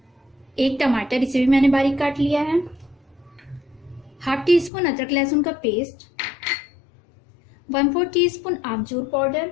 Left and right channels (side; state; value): right; drops out; at 4.7 s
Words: 1 टमाटर, इसे भी मैंने बारीक काट लिया है, ½ टीस्पून अदरक लहसुन का पेस्ट, 1/4 टीस्पून आमचूर पाउडर,